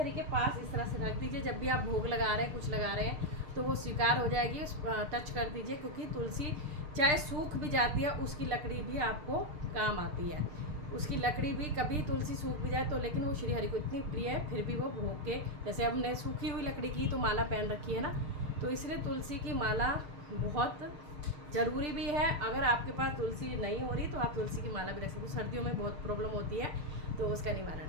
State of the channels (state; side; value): late; left; 6.7 ms